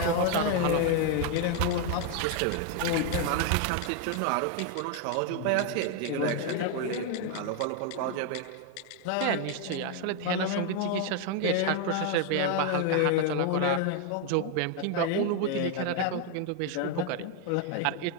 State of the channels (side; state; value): both; different; correlation 0.01